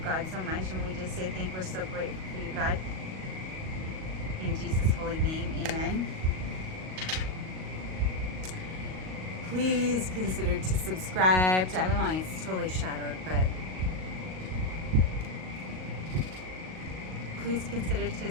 God so much, and we just say we're so grateful for you, God. In Jesus' holy name, amen. Please consider to subscribe. I mean, it's totally shadowed, but please consider to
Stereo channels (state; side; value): late; left; 38 ms